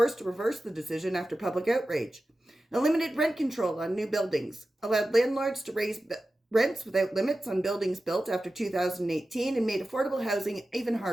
to reverse the decision after public outrage. Eliminated rent control on new buildings. Allowed landlords to raise rents without limits on buildings built after 2018 and made affordable housing even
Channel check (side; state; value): both; normal; correlation 0.94